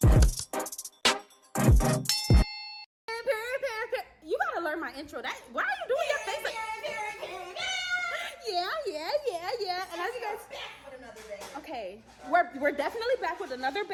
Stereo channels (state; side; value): identical; both; correlation 1.00